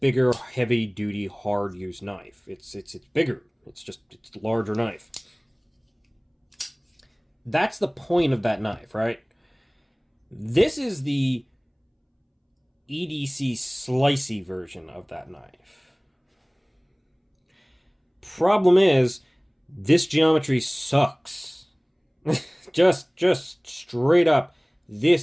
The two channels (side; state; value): both; identical; correlation 1.00